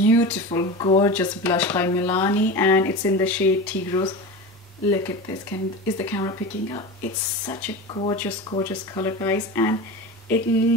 gorgeous blush by Milani, and it's in the shade Tea Rose. Look at this. Is the camera picking up? It's such a gorgeous, gorgeous color, guys, and it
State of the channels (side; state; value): both; normal; correlation 0.27